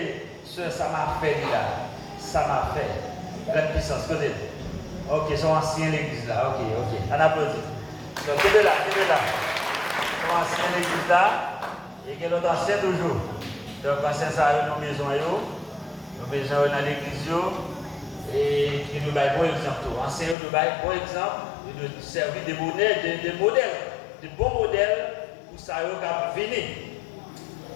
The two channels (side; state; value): right; drops out; at 20.4 s